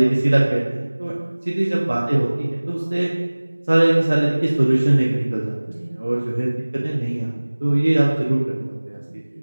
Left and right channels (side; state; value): both; inverted; correlation -1.00